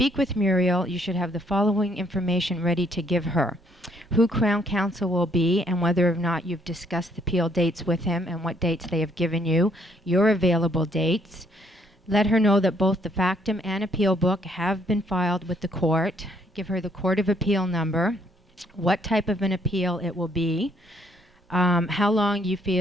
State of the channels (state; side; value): normal; both; correlation 0.67